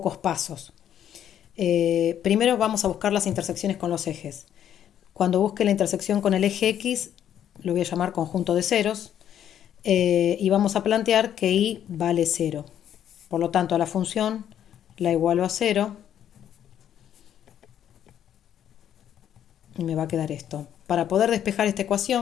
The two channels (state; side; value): quieter; right; 10.1 dB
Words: pasos. Primero vamos a buscar las intersecciones con los ejes. Cuando busque la intersección con el eje X, lo voy a llamar conjunto de ceros, y vamos a plantear que Y vale 0. Por lo tanto, a la función la igualo a 0 y me va a quedar esto. Para poder despejar esta